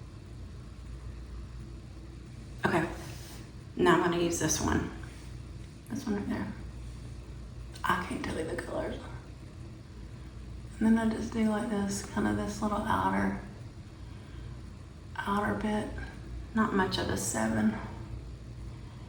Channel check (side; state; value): both; identical; correlation 1.00